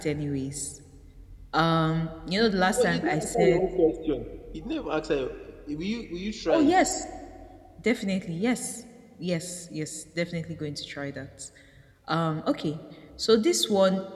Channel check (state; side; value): identical; both; correlation 1.00